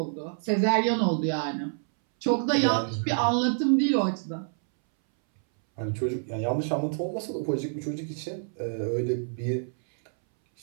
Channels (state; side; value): silent; left; 60 dB below the other